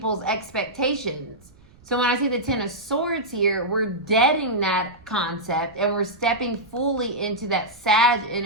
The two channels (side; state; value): right; noise; rumble, 26 dB below the sound